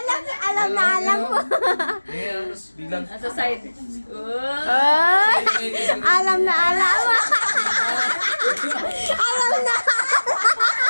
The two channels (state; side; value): inverted; both; correlation -1.00